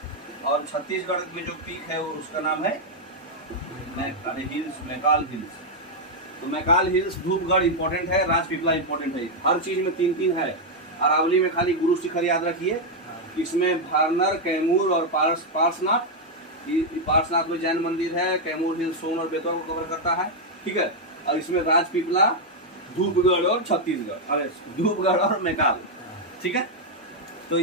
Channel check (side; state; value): both; normal; correlation 0.00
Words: और छत्तीसगढ़ में जो पीक है उसका नाम है मैकाल हिल्स। तो मैकाल हिल्स, धूपगढ़ इंपॉर्टेंट है, राजपीपला इंपॉर्टेंट है। हर चीज में 3-3 है। अरावली में खाली गुरु शिखर याद रखिए। इसमें वारनर, कैमूर और पार्श्वनाथ। पार्श्वनाथ में जैन मंदिर है। कैमूर हिल्स सोन और बेतवा को कवर करता है, ठीक है। और इसमें राजपीपला, धूपगढ़ और छत्तीसगढ़, अरे धूपगढ़ और मैकाल, ठीक है। तो